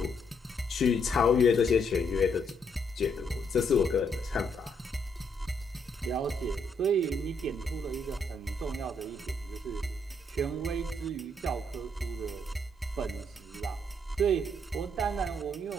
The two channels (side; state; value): both; normal; correlation 0.73